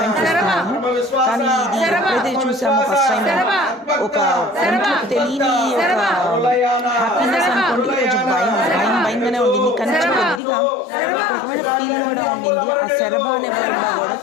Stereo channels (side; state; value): right; drops out; at 10.4 s